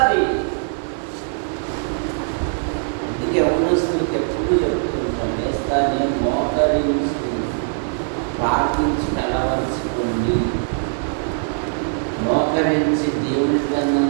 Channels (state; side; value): silent; left; 57 dB below the other